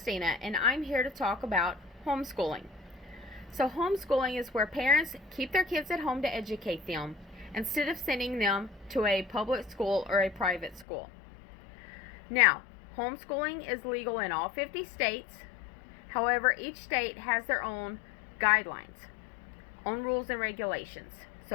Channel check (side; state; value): right; drops out; at 10.9 s